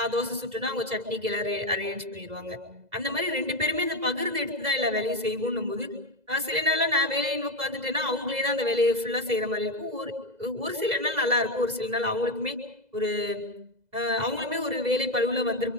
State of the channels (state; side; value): late; left; 2.0 ms